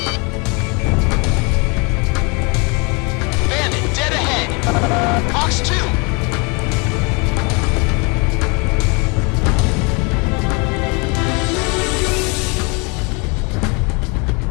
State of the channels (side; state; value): right; quieter; 31.1 dB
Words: Bandit, dead ahead! Fox 2!